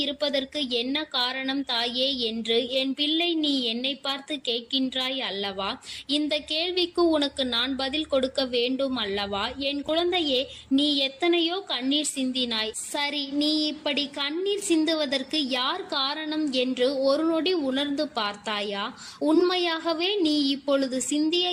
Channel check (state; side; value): identical; both; correlation 1.00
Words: இருப்பதற்கு என்ன காரணம் தாயே என்று என் பிள்ளை நீ என்னை பார்த்து கேட்கின்றாய் அல்லவா? இந்த கேள்விக்கு உனக்கு நான் பதில் கொடுக்க வேண்டும் அல்லவா? என் குழந்தையே, நீ எத்தனையோ கண்ணீர் சிந்தினாய். சரி, நீ இப்படி கண்ணீர் சிந்துவதற்கு யார் காரணம் என்று ஒரு நொடி உணர்ந்து பார்த்தாயா? உண்மையாகவே நீ இப்பொழுது சிந்திய